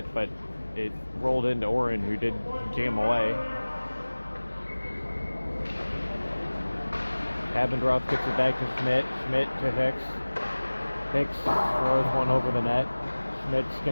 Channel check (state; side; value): inverted; both; correlation -1.00